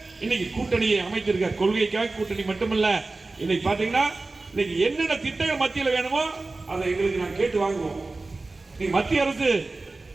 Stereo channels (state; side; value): quieter; left; 3.4 dB